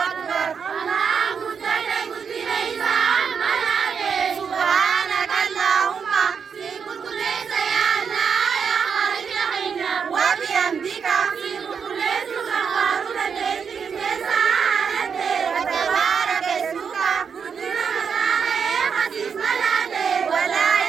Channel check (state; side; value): quieter; left; 6.5 dB